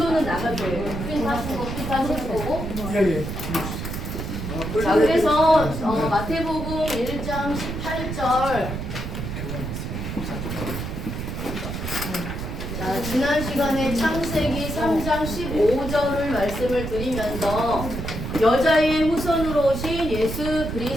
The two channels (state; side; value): noise; right; rumble, 5 dB below the sound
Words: 나갈 거예요. 프린트 하신 거 프린트 하실 거고. 자, 그래서 마태복음 1장 18절. 자, 지난 시간에 창세기 3장 15절을 말씀을 드리면서 여자의 후손으로 오신 예수